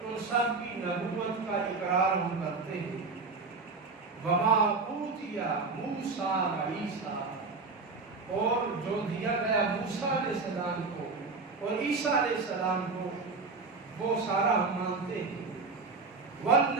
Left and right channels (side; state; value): left; quieter; 4.2 dB